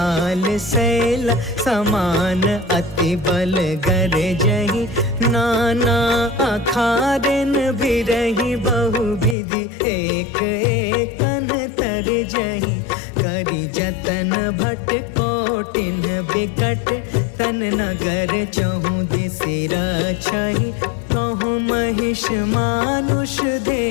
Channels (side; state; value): right; drops out; at 9.3 s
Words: शैल समान अति बल गरजहि, नाना अखारन बिरहि। बहु विधि एक एकन तरजहि, करि जतन भट कोटिन बिकट। तन नगर चहु दिसि रक्षहि, कहूँ महिष मानुष